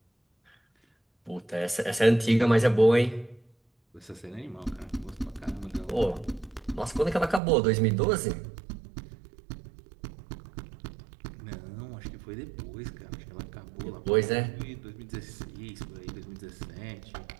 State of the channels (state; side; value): drops out; left; at 7.4 s